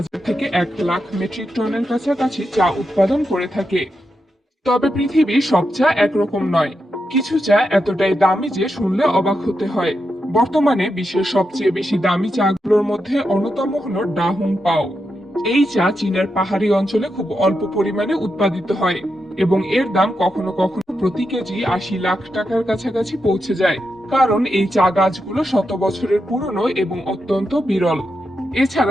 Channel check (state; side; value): normal; both; correlation 0.86